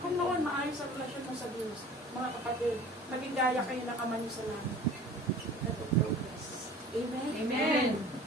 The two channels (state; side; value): normal; both; correlation 0.44